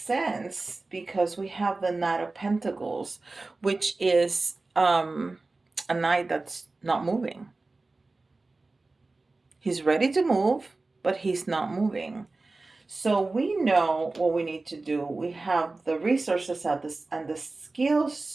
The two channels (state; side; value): quieter; left; 3.4 dB